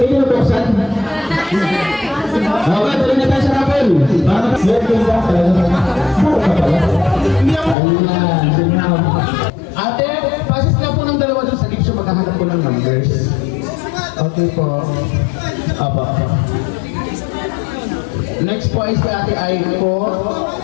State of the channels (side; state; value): right; drops out; at 7.8 s